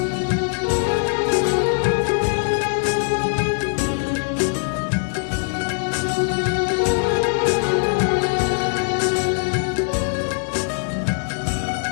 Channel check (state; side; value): silent; right; 65 dB below the other